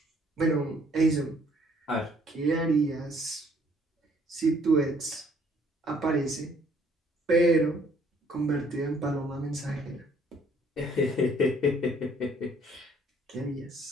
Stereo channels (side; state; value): both; normal; correlation 0.62